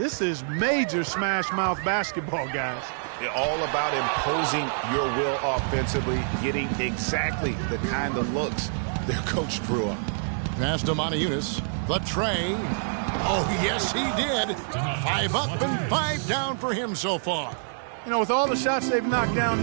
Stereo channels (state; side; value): silent; left; digital silence